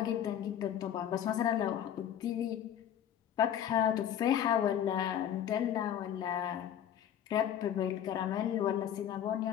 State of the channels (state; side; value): quieter; right; 9.9 dB